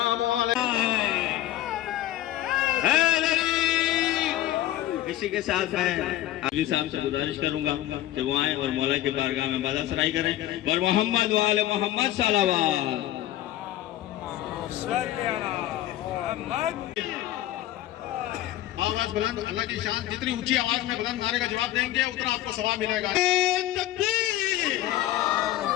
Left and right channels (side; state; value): right; quieter; 14.0 dB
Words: عليك۔ اسی کے ساتھ میں علی صاحب سے گزارش کروں گا کہ وہ آئیں اور مولا کے بارگاہ میں بازا سرائی کریں اور محمد وآل محمد صلوات۔ آواز بلند، اللہ کی شان جتنی اونچی آواز میں بلند نعرے کا جواب دیں گے اتنا آپ کو ثواب ملے گا۔ تکبیر،